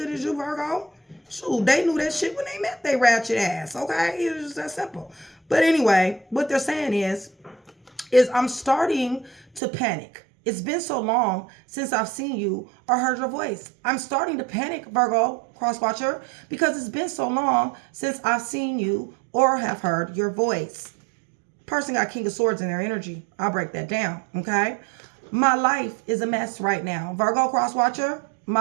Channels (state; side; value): drops out; left; at 9.6 s